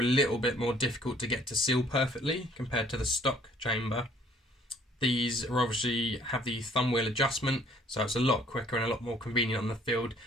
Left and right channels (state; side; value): normal; both; correlation 0.59